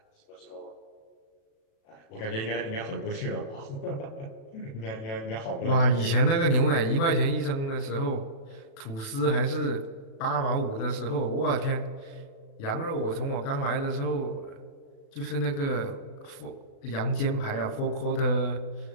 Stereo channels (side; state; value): right; late; 36 ms